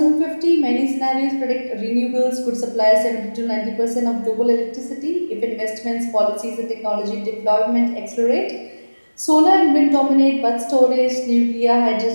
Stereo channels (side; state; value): both; inverted; correlation -1.00